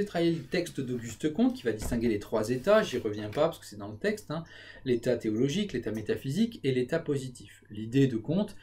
travaillé le texte d'Auguste Comte qui va distinguer les trois états, j'y reviens pas parce que c'est dans le texte, l'état théologique, l'état métaphysique et l'état positif. L'idée de Comte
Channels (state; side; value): identical; both; correlation 1.00